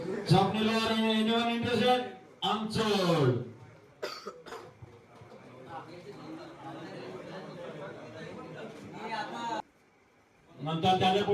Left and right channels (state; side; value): identical; both; correlation 1.00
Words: स्वप्नील लोहार एनिवन इंटरेस्टेड? अनसोड. नंतर त्याच्या